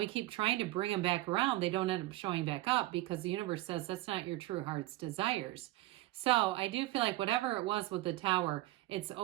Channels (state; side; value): quieter; left; 17.6 dB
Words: keep trying to bring them back around, they don't end up showing back up because the universe says that's not your true heart's desires. So I do feel like whatever it was with the tower, it's